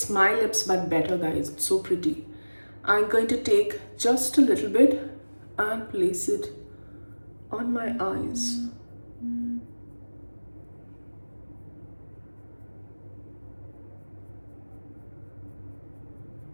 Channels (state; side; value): inverted; both; correlation -1.00